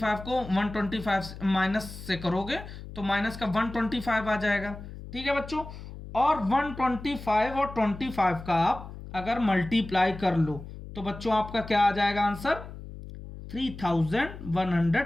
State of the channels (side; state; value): left; noise; hum, 13 dB below the sound